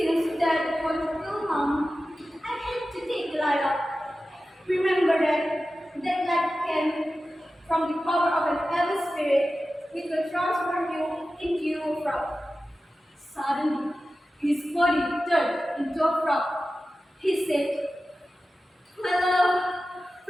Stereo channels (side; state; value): both; normal; correlation 0.94